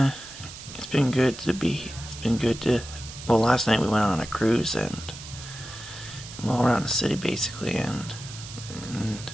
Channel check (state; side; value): noise; right; hiss, 13 dB below the sound